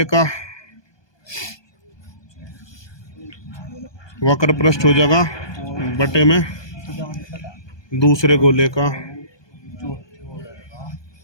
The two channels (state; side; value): late; right; 1.2 ms